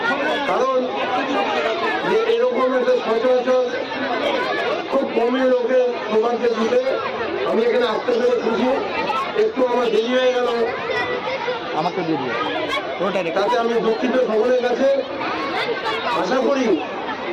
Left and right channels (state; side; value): identical; both; correlation 1.00